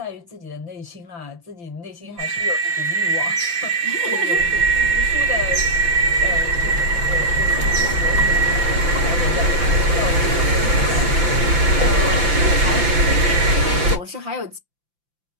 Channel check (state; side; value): late; left; 5.9 ms